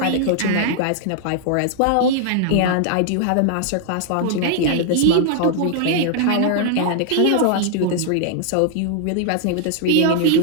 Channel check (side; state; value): both; different; correlation -0.01